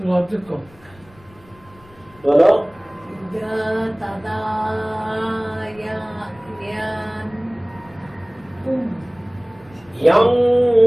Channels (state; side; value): noise; left; rumble, 26 dB below the sound